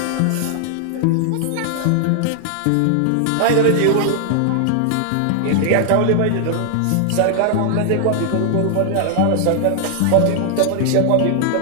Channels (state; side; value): different; both; correlation 0.00